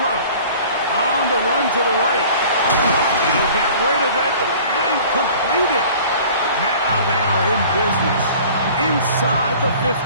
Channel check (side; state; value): both; inverted; correlation -0.46